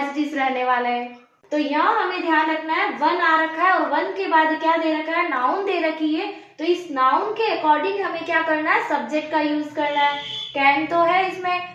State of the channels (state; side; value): identical; both; correlation 1.00